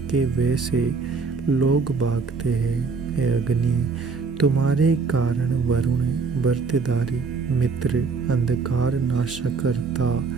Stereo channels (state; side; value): quieter; left; 4.8 dB